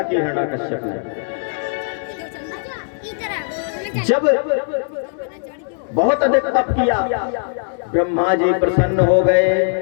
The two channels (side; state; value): right; silent; digital silence